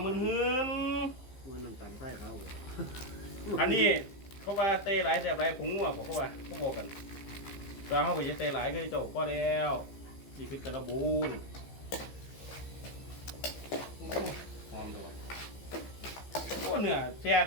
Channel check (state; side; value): late; right; 15 ms